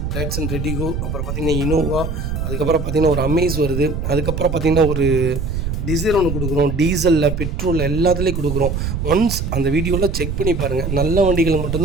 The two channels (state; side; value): noise; right; rumble, 3 dB below the sound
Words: டாட்சன் ரெடிகோ, அப்புறம் பார்த்திங்கன்னா இனோவா, அதுக்கப்புறம் பார்த்திங்கன்னா ஒரு அமேஸ் வருது, அதுக்கப்புறம் பார்த்திங்கன்னா ஒரு டிசைர் ஒன்று கொடுக்குறோம். டீசலில், பெட்ரோலில் எல்லாத்துலேயும் கொடுக்குறோம். ஒன்ஸ் அந்த வீடியோவில் செக் பண்ணி பாருங்கள். நல்ல வண்டிகள்